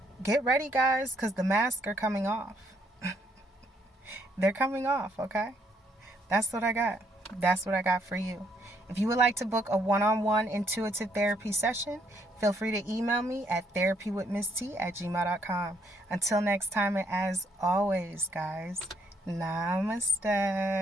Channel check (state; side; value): normal; both; correlation 0.71